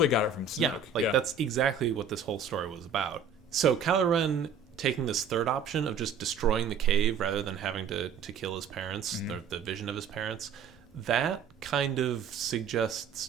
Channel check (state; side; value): quieter; left; 5.7 dB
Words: got it from Snoke. Yeah, that's exactly what this whole story was about. So Kylo Ren taking this third option of just destroying the cave rather than having to kill his parents, mm-hmm. the vision of his parents, that kind of suggests